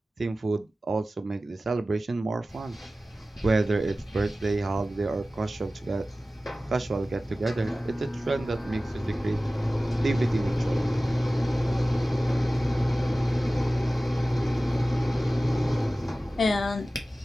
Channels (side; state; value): both; normal; correlation 0.96